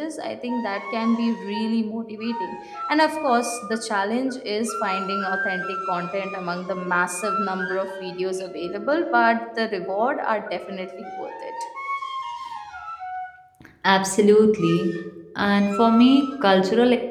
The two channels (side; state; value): both; identical; correlation 1.00